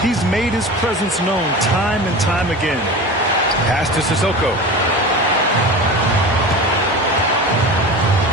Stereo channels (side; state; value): both; normal; correlation 0.32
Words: He's made his presence known time and time again. Pass to Sissoko.